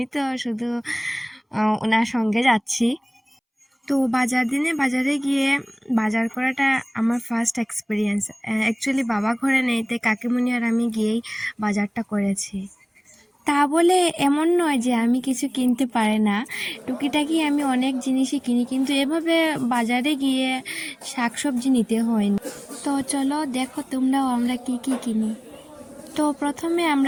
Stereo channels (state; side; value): identical; both; correlation 1.00